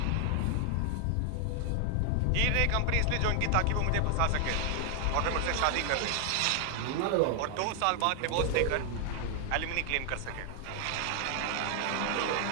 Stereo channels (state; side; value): different; both; correlation 0.00